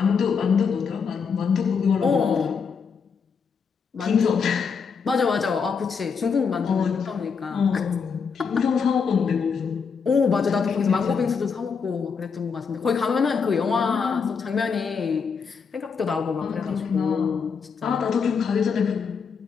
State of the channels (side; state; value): right; quieter; 5.9 dB